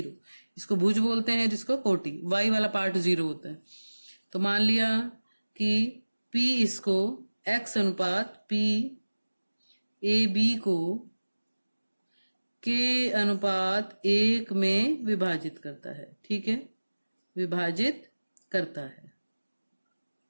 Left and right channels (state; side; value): inverted; both; correlation -1.00